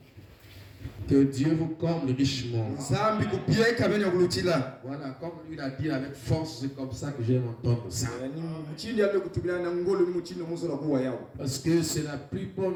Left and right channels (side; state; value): both; identical; correlation 1.00